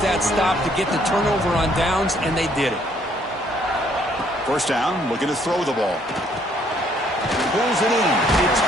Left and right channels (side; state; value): both; normal; correlation 0.66